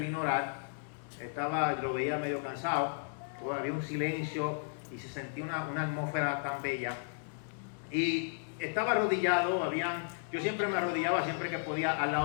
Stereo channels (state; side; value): silent; right; digital silence